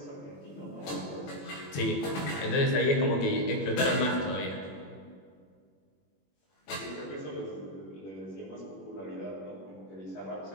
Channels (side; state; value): right; late; 21 ms